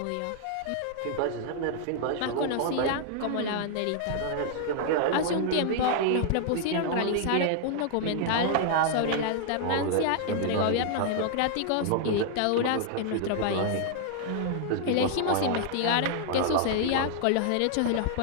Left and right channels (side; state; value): both; different; correlation 0.00